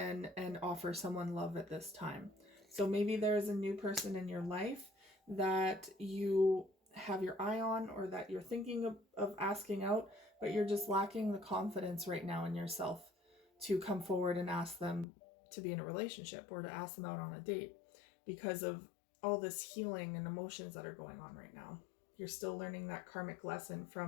offer someone love at this time. So maybe there is a new person in your life that you have your eye on, or that you're thinking of asking out, but you're just lacking the confidence right now in yourself to come forward and ask them to be in a relationship or to ask them out on a date because of all this healing and emotions that are going on right now. You're still learning that karmic lesson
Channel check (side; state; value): right; drops out; at 15.1 s